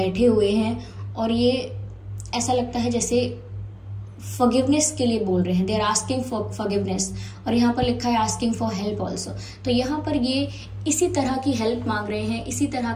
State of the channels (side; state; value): both; identical; correlation 1.00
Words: हुए हैं, और ये ऐसा लगता है जैसे फॉरगिवनेस के लिए बोल रहे हैं, they are asking for forgiveness, और यहाँ पर लिखा है आस्किंग फॉर हेल्प ऑल्सो। तो यहाँ पर ये इसी तरह की हेल्प मांग रहे हैं, इसी तरह